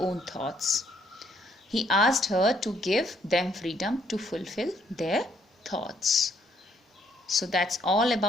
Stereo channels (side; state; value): both; normal; correlation 0.69